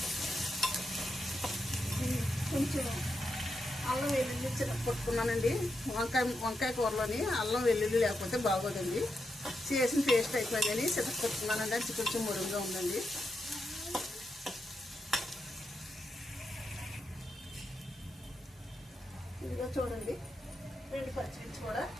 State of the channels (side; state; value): both; normal; correlation 0.85